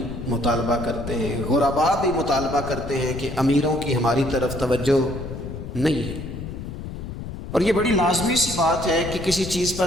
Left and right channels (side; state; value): left; noise; rumble, 8 dB below the sound